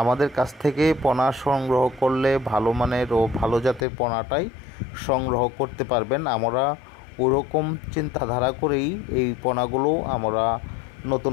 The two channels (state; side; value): drops out; right; at 3.9 s